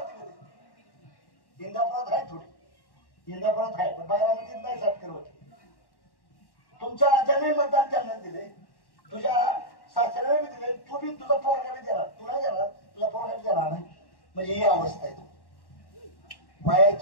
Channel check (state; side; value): late; right; 1.1 ms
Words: इंदापुरात आहे थोडी, इंदापुरात आहे पण बारामतीत नाही. सत्कर होते तुमच्या राजाने मतदान त्यांना दिले, तुझ्या सासऱ्याने बी दिले, तू बी तुझा पोरगा बी देणार, तू नाही देणार, तुझा पोरगा बी देणार नाही. म्हणजे ही अवस्था आहे.